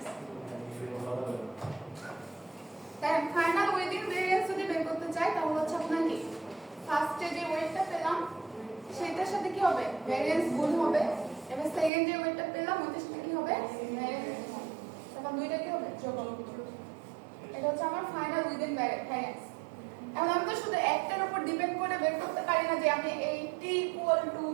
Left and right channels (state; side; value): drops out; left; at 11.9 s